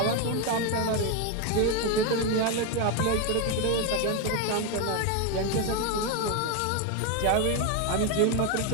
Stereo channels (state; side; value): different; both; correlation 0.02